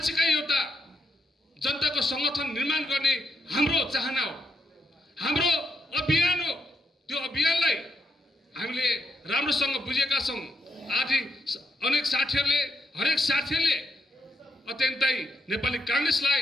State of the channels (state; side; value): normal; both; correlation 0.80